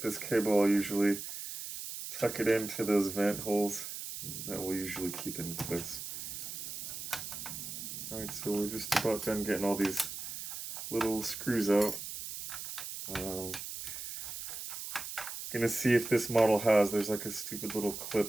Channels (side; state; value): right; noise; hiss, 8 dB below the sound